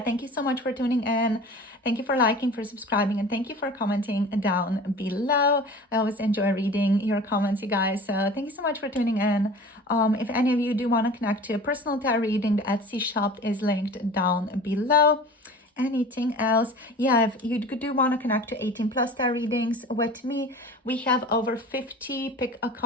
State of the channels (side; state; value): both; normal; correlation 0.40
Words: you so much for tuning in. Thank you for liking, for subscribing, and thank you for commenting down below. I always enjoy reading your comments, you guys. So thank you so much for tuning in. If any of you do want to connect to a personal tarot reading, the Etsy shop is linked down below. Anything else? Yeah, if you do want to connect to 18 plus star readings with me, we have over 50 pick a